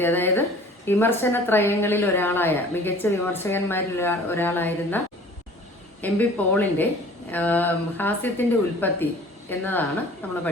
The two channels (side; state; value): both; normal; correlation 0.47